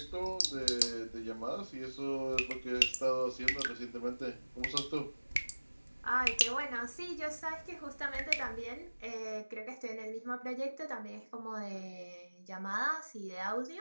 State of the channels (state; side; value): inverted; both; correlation -1.00